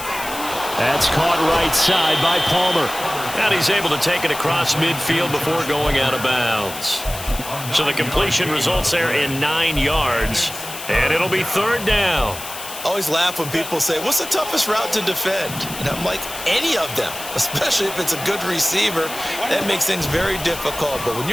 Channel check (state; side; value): noise; left; hiss, 10 dB below the sound